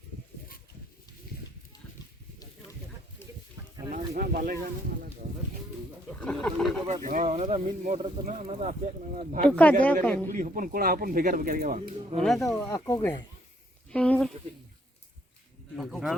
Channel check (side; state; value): both; normal; correlation 0.68